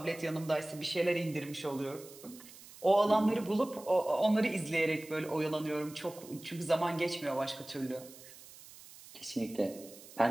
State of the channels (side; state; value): right; noise; hiss, 19 dB below the sound